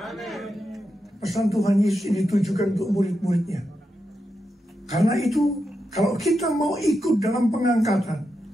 Pesan Tuhan Yesus ini ditujukan untuk murid-muridnya. Karena itu, kalau kita mau ikut dalam pengangkatan,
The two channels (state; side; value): normal; both; correlation 0.87